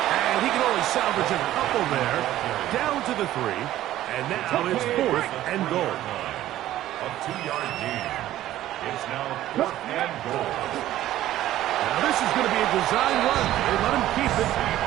And he can only salvage a couple there. Down to the 3. And now it's 4th and goal. A 2-yard gain. It's now 4th and goal. Now this is going to be a design run. They let him keep it.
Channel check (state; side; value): quieter; left; 13.8 dB